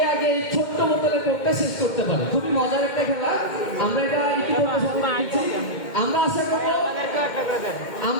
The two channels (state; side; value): late; right; 2.1 ms